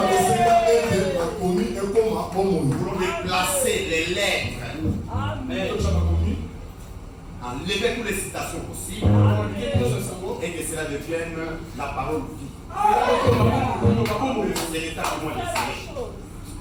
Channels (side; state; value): both; identical; correlation 1.00